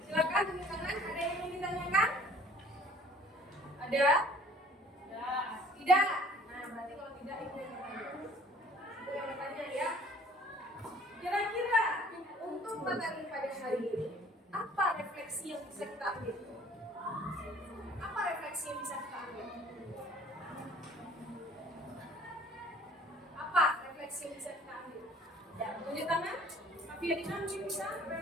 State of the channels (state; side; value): normal; both; correlation 0.53